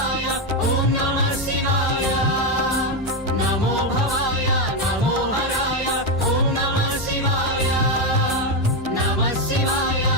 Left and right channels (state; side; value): normal; both; correlation 0.08